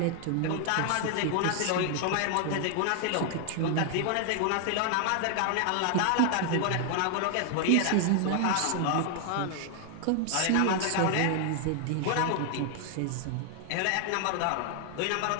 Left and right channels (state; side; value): different; both; correlation 0.00